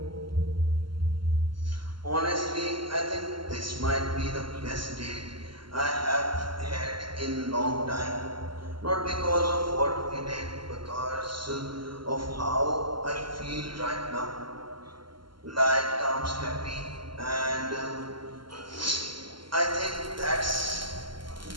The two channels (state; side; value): late; left; 0.72 ms